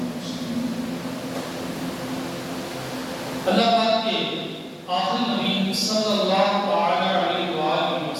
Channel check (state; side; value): identical; both; correlation 1.00